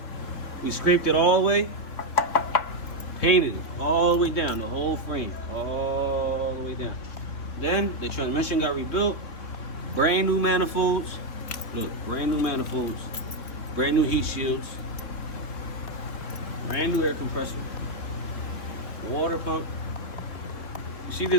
We scraped it all the way, painted it all the way down, the whole frame, all the way down. Then the transmission got rebuilt, brand new manifolds. Look, brand new manifolds, brand new heat shields, brand new air compressor, water pump. You see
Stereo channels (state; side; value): late; right; 3.4 ms